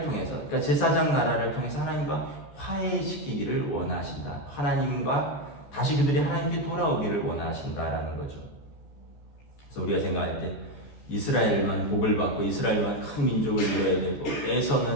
통해서 그러니까 제사장 나라를 통해서 하나님과 화해시키기를 원하신다. 하나님과 다시 그들이 하나님께 돌아오기를 원하신다라는 거죠. 그래서 우리가 생각할 때 이스라엘만 복을 받고 이스라엘만 큰 민족을 이뤄야 되고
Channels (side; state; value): right; late; 14 ms